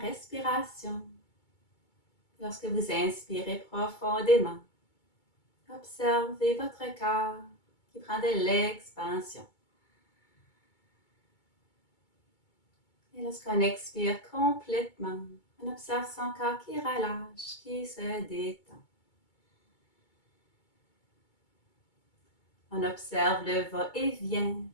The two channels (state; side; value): late; right; 2.2 ms